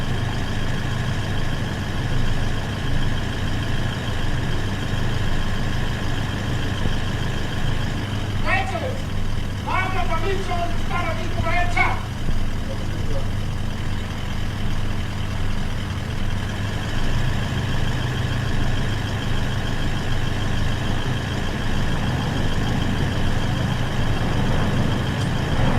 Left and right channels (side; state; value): both; identical; correlation 1.00